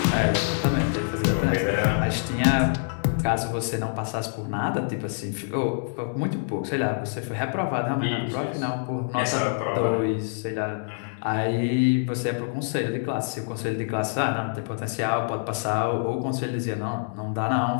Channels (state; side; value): silent; right; digital silence